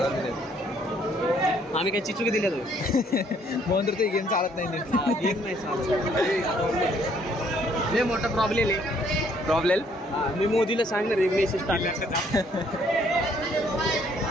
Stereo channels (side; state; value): both; normal; correlation 0.65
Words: दिले. आम्ही काय चिचुकी दिल्या म्हणून तर ते गेम चालत नाही. गेम नाही चालत. लय मोठा प्रॉब्लेम. मी मोदीला सांगणार एक मेसेज टाकला.